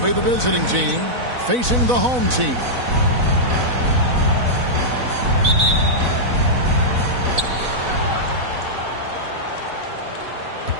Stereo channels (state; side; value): late; left; 4.0 ms